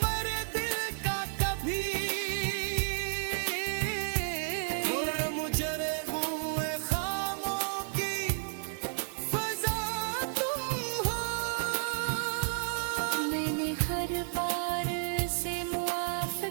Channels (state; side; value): silent; left; 56 dB below the other